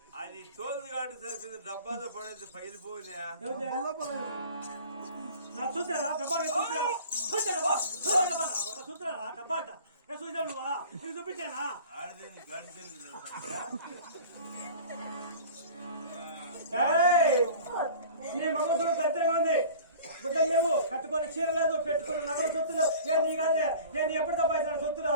అది తోలు కాటు సరిపోయింది. డబ్బాతో పడేది పగిలిపోయినా. చూసారా డబ్బా? చూసారా డబ్బా అంట? చూసా నువ్వా? నీకు చూపించానా? నీ మగసుడు దరిద్రంగా ఉంది. గుడ్డలు లేవు, కట్టుకొని చీర లేదు, పెట్టుకుని నగలు సొత్తులు. నేను నీ కాదే, నేను ఎప్పుడు సంపాదించిన సొత్తులు.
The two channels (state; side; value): inverted; both; correlation -0.43